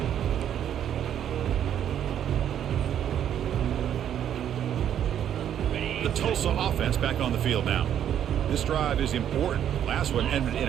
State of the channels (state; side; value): quieter; left; 9.9 dB